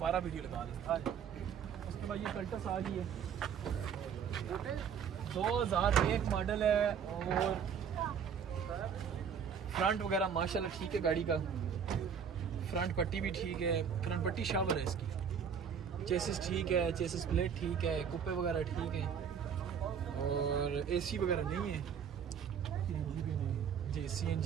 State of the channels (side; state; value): left; quieter; 7.4 dB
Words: वीडियो लगा दें। उसके बाद ये कल्टस आ गई है, 2001 मॉडल है, और फ्रंट वगैरह माशाल्लाह ठीक है, गाड़ी का फ्रंट पट्टी भी ठीक है, फ्रंट पट्टी शावर है इसकी, चेसिस ठीक है, चेसिस प्लेट ठीक है, कुप्पे वगैरह ठीक है, और एसी वगैरह नहीं है जी,